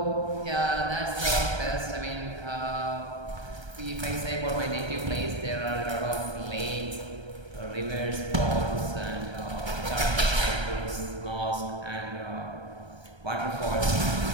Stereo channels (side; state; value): left; late; 1.3 ms